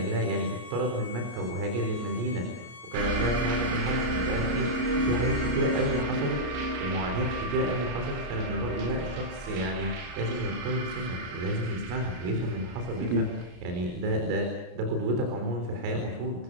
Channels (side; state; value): left; late; 33 ms